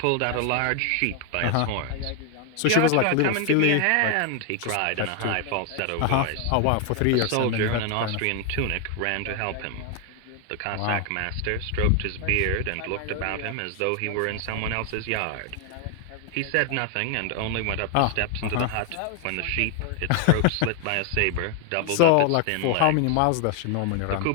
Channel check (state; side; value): different; both; correlation 0.00